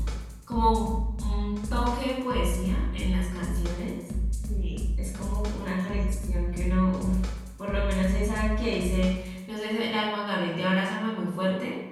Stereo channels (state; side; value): identical; both; correlation 1.00